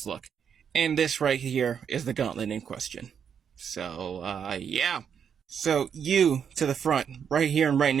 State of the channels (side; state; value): left; quieter; 7.6 dB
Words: look. And this right here is the gauntlet in question. So, yeah. So you to the front, right here and right